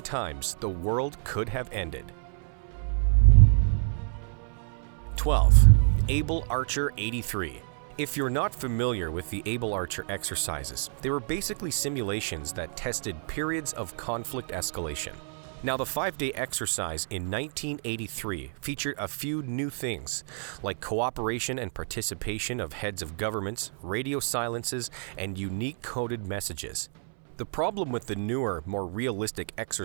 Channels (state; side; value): silent; left; 59 dB below the other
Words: times the world could have ended. 12. Abel Archer 83. If you're not familiar with the Abel Archer exercises, they were basically simulations that tested periods of conflict escalation. Now, the 5-day exercise in 1983 featured a few new things, like cooperation and participation of heads of governments, radio silences, and unique coded messages. The problem with the newer, more realistic